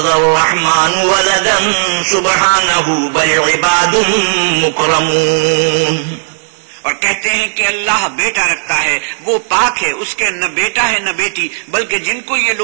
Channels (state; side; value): silent; left; digital silence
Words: الرحمن ولدا سبحانه بل عباد مكرمون. اور کہتے ہیں کہ اللہ بیٹا رکھتا ہے، وہ پاک ہے، اس کے نہ بیٹا ہے نہ بیٹی، بلکہ جن کو یہ